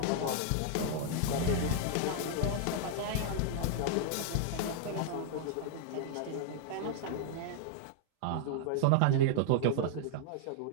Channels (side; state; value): both; different; correlation -0.01